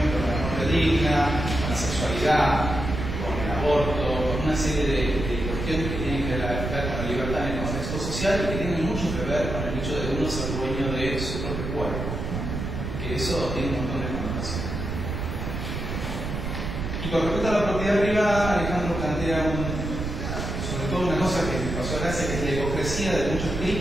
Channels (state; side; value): noise; right; rumble, 4 dB below the sound